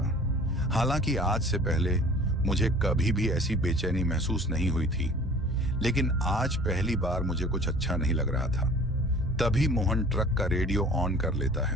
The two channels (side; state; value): both; normal; correlation 0.47